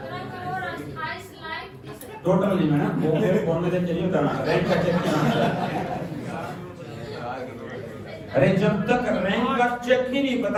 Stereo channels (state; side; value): identical; both; correlation 1.00